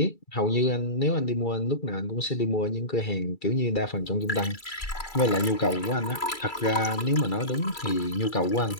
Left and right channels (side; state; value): right; late; 2.3 ms